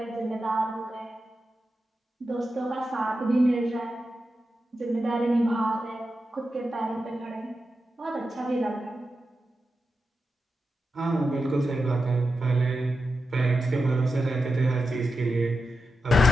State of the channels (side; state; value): both; normal; correlation 0.89